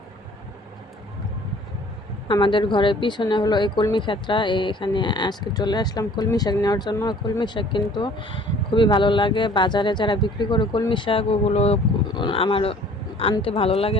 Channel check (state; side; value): normal; both; correlation 0.53